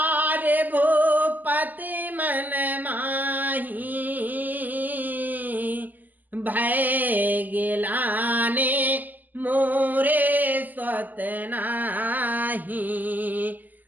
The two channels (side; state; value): left; late; 0.084 ms